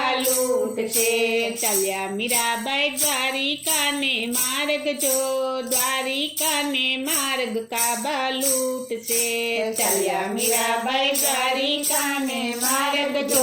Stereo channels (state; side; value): identical; both; correlation 1.00